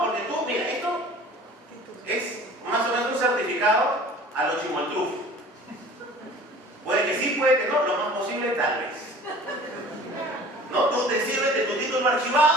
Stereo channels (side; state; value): both; normal; correlation 0.46